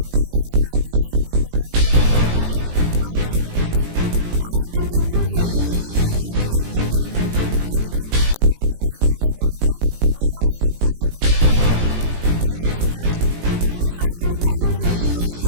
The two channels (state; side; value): late; left; 18 ms